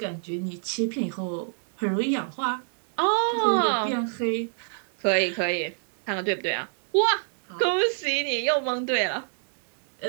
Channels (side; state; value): left; silent; digital silence